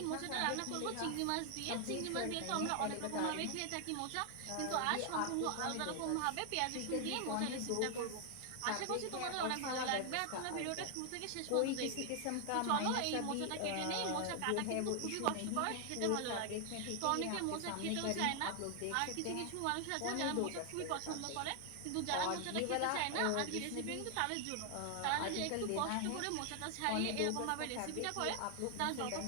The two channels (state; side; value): different; both; correlation 0.00